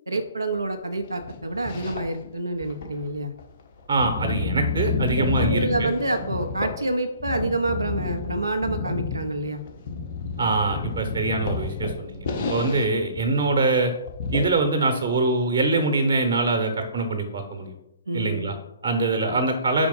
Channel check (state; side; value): inverted; both; correlation -0.52